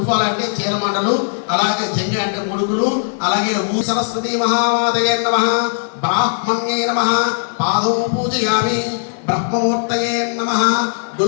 అంటే చీరమండలు, అలాగే జంగ అంటే ముడుకులు, అలాగే సరస్వతి మహామాతయే నమః, బ్రాహ్మణ్యే నమః, పాదౌ పూజయామి, బ్రహ్మమూర్తయే నమః,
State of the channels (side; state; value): right; silent; digital silence